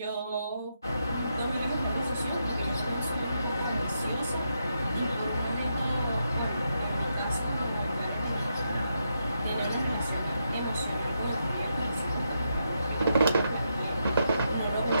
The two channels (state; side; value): inverted; both; correlation -0.83